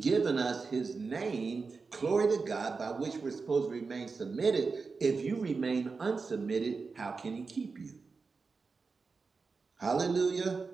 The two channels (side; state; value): left; quieter; 4.5 dB